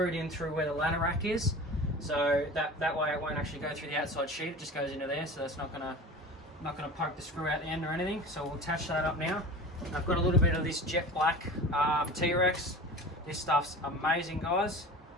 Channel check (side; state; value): both; normal; correlation 0.36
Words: in through where the ladder rack is. So that way it won't actually go through the outside sheet, it just goes into there, so that's not gonna poke the screw out the end or anything. So we'll attach that up now. I've got a little bit of this jet black T-Rex. This stuff's amazing, guys.